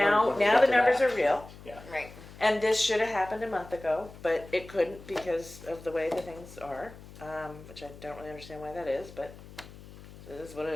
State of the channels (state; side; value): noise; left; hum, 18 dB below the sound